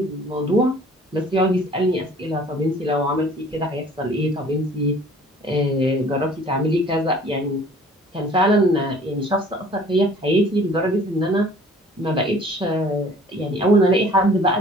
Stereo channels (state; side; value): normal; both; correlation 0.51